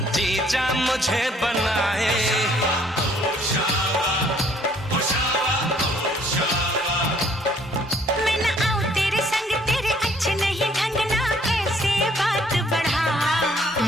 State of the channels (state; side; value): normal; both; correlation 0.62